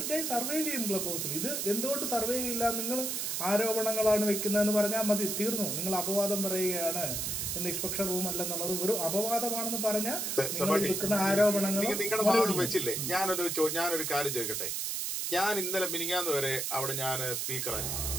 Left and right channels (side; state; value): right; noise; hiss, 1 dB below the sound